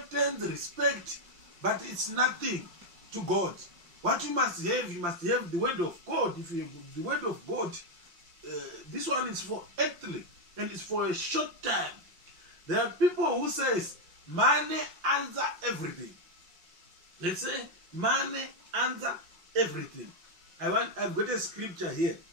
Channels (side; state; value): left; late; 5.7 ms